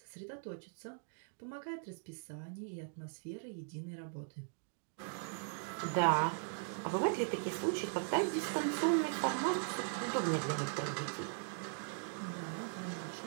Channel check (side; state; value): left; silent; digital silence